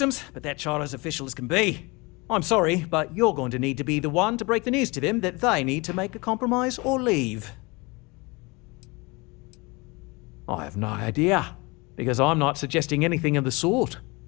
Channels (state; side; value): quieter; right; 26.2 dB